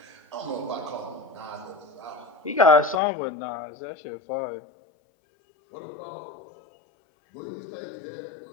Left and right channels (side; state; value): right; drops out; at 3.0 s